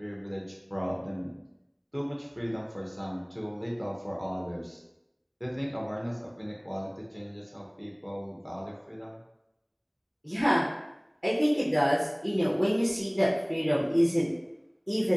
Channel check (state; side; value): identical; both; correlation 1.00